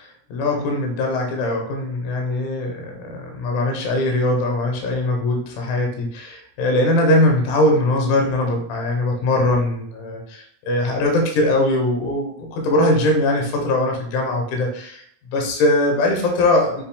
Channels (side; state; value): right; late; 17 ms